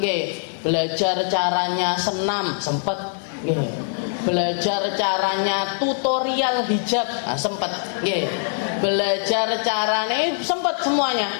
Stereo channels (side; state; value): right; silent; digital silence